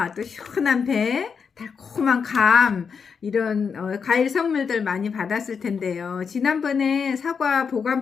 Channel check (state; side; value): quieter; right; 6.1 dB